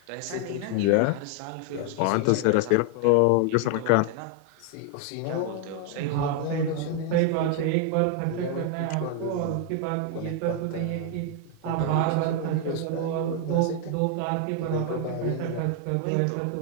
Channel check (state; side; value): different; both; correlation 0.00